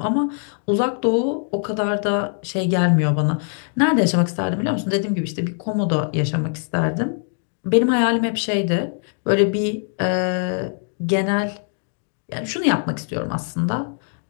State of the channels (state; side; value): silent; right; 56 dB below the other